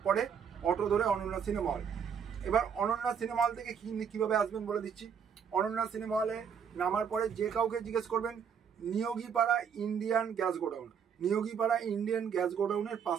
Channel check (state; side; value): quieter; left; 7.3 dB